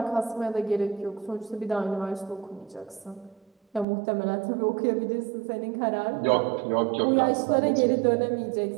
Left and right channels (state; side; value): drops out; left; at 3.9 s